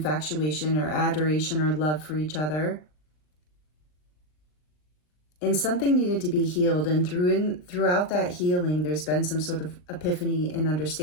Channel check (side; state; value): right; late; 39 ms